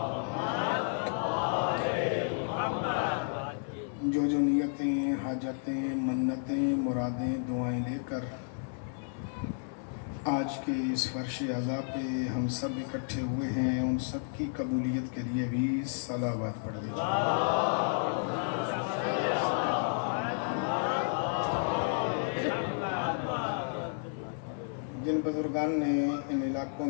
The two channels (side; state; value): right; silent; 57 dB below the other